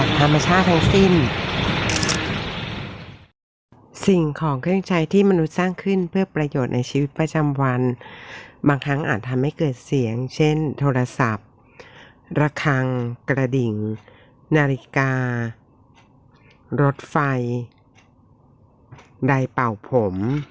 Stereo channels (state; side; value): identical; both; correlation 1.00